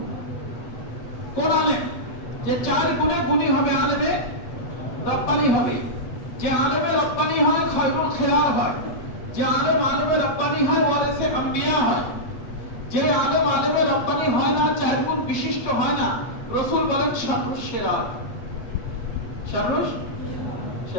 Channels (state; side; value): late; right; 8.2 ms